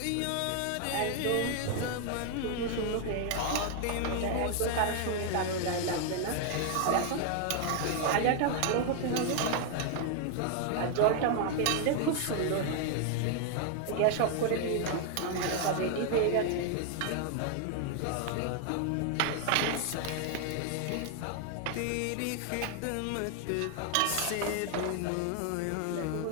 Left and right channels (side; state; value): both; different; correlation 0.00